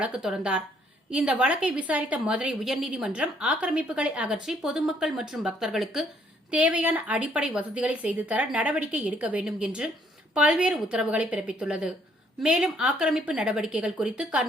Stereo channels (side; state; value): both; normal; correlation 0.66